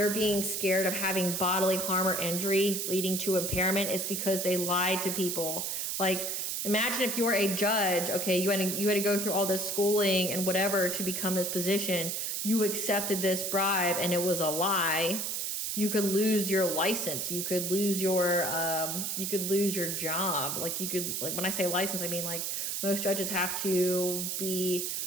being scared of having bodily harm or injury leading to impairment, it's because they lied to people. Like imagine if you were a judge, okay, you had to go through all this schooling and whatever to become this position. You accepted this bribe and it was a lie. You could lose your license. You could lose your job. Like when I say license, I mean like most judges have to be,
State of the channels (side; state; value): right; noise; hiss, 2 dB below the sound